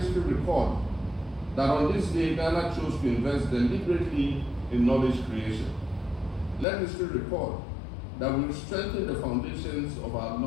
record that on this day, Ghana chose to invest deliberately in knowledge creation. Let history record that we strengthened the foundations of our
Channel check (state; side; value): drops out; right; at 6.7 s